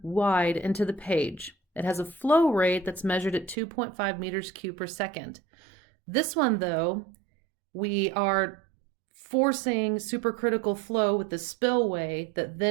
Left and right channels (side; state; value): left; drops out; at 3.6 s